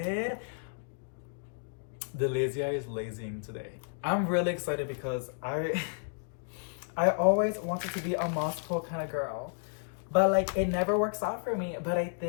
The lazy eye is lazing today. I'm really excited because I always wanted to be a moss pole kind of girl. But like it never works out for me. But I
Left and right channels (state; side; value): silent; right; digital silence